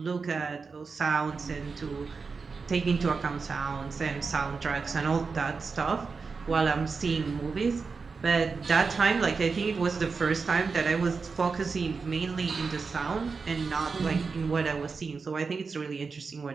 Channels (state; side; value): quieter; left; 4.8 dB